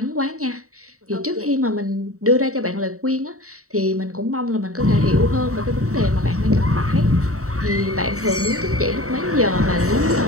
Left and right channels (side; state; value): left; late; 0.65 ms